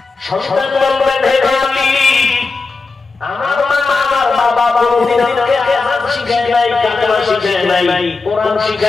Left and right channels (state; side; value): quieter; right; 4.1 dB